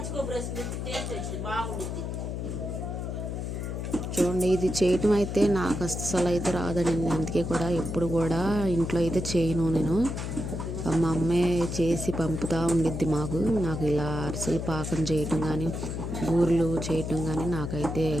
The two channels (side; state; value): left; noise; hum, 4 dB below the sound